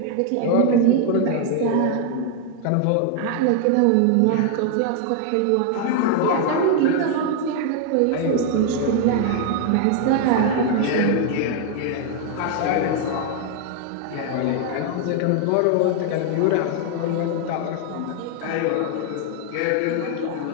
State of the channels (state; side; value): different; both; correlation 0.00